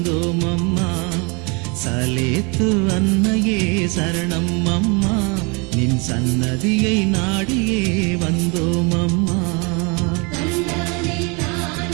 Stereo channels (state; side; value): quieter; left; 30.7 dB